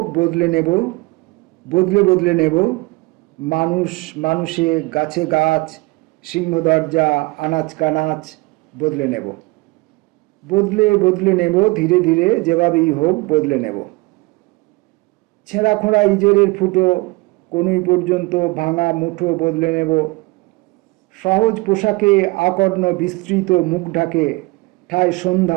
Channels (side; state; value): left; quieter; 24.0 dB